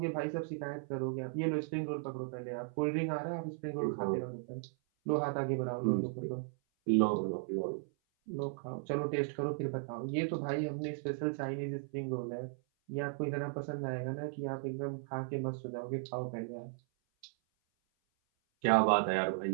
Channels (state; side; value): silent; left; 54 dB below the other